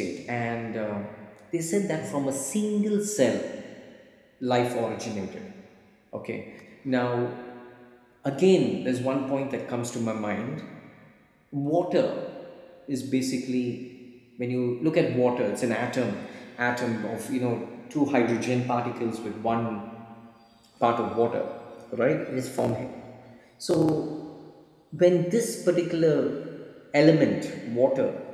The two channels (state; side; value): identical; both; correlation 1.00